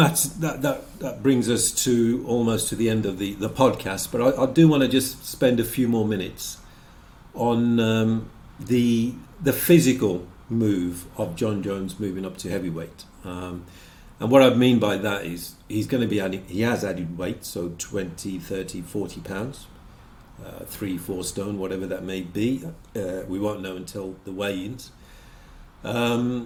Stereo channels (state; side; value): identical; both; correlation 1.00